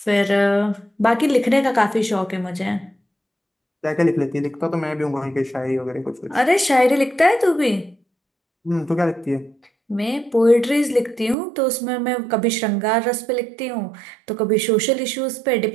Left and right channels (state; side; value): drops out; left; at 11.4 s